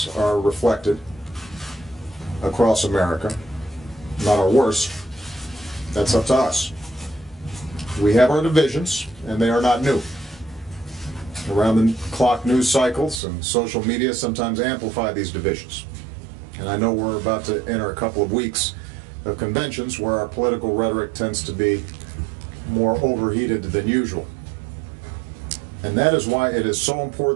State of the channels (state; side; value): drops out; left; at 13.2 s